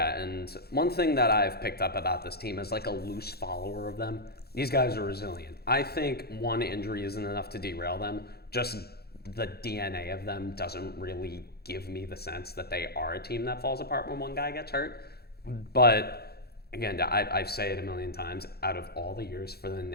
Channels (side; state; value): right; late; 0.46 ms